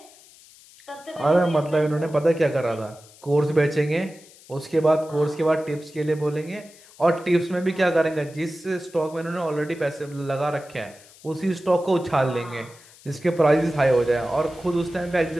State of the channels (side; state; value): left; noise; hiss, 24 dB below the sound